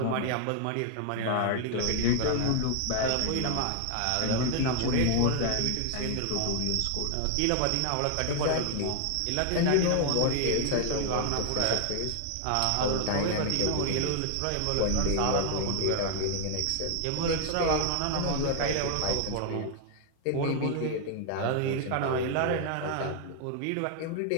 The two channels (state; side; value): different; both; correlation 0.00